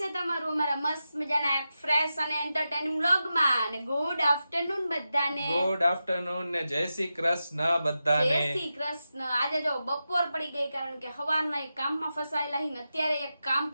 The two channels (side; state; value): both; inverted; correlation -0.91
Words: તમારું અમારા મસ્ત મજાના એક ફ્રેશ અને એન્ટરટેનિંગ વ્લોગમાં. અને ગુડ આફ્ટરનૂન બધાને. ગુડ આફ્ટરનૂન ને જય શ્રી કૃષ્ણ બધાને. જય શ્રી કૃષ્ણ. આજે જો બપોર પડી ગઈ કારણ કે સવારના એક કામમાં ફસાયેલા હી ને અત્યારે એક કામ